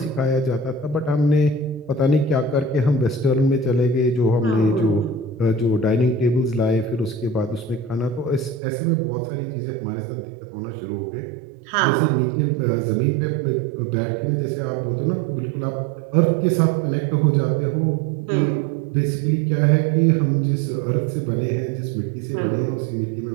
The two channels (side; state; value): left; drops out; at 8.6 s